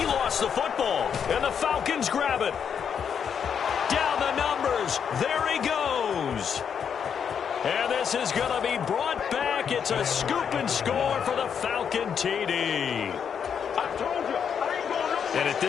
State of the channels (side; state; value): right; quieter; 7.5 dB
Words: lost the football. And the Falcons grab it. Down the numbers. There he goes. And this is going to be brought back. It's a scoop and score for the Falcon TD. And at